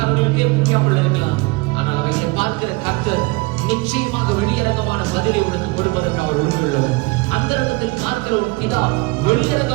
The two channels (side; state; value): left; quieter; 24.8 dB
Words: புரியாமல் இருக்கலாம். ஆனால் அவைகளை பார்க்கிற கர்த்தர் நிச்சயமாக வெளியரங்கமான பதிலை உனக்கு கொடுப்பதற்கு அவர் உண்மையுள்ளவர். அந்த இடத்தில் பார்க்கிற ஒரு பிதா